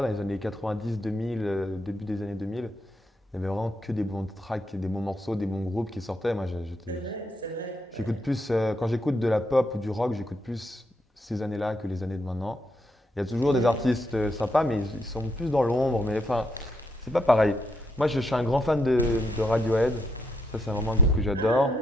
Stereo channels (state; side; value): normal; both; correlation 0.78